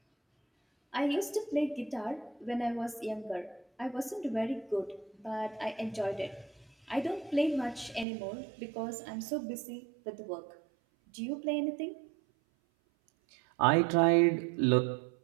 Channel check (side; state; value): left; drops out; at 8.1 s